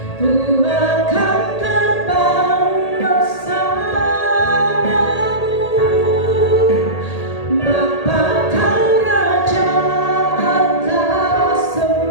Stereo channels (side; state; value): right; late; 1.8 ms